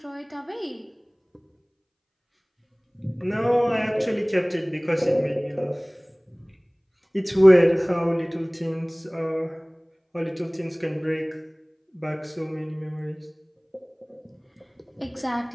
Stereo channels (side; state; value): both; identical; correlation 1.00